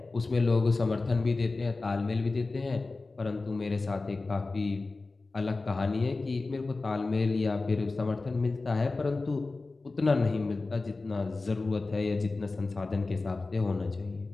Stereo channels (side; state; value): right; quieter; 3.6 dB